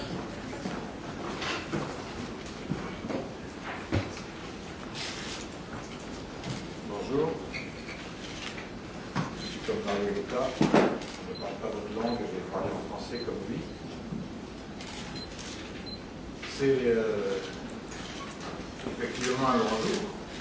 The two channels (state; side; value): identical; both; correlation 1.00